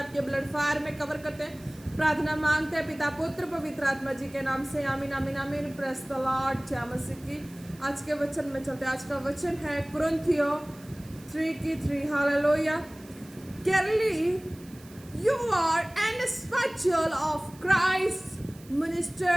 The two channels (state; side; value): noise; right; hiss, 23 dB below the sound